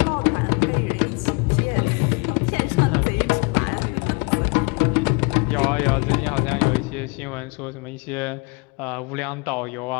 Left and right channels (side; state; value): right; quieter; 30.4 dB